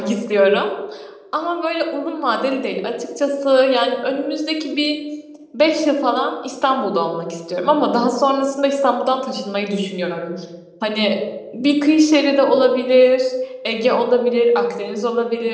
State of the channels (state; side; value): identical; both; correlation 1.00